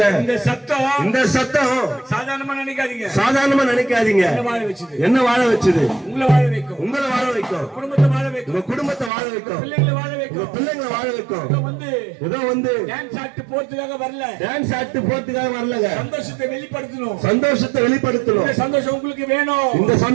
இந்த சத்தம் சாதாரணமா நினைக்காதீங்க. என்ன வாழ வச்சது? உங்களை வாழ வைக்கும், குடும்பத்தை வாழ வைக்கும், உங்க குடும்பத்தை வாழ வைக்கும், பிள்ளைங்களை வாழ வைக்கும், பிள்ளைங்களை வாழ வைக்கும். ஏதோ டான்ஸ் ஆட்டு போறதுக்காக வரலங்க. சந்தோஷத்தை வெளிப்படுத்தணும். இந்த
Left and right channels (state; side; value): drops out; left; at 9.1 s